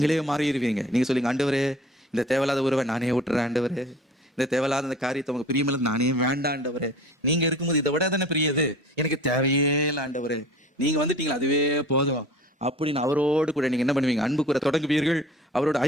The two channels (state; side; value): normal; both; correlation 0.44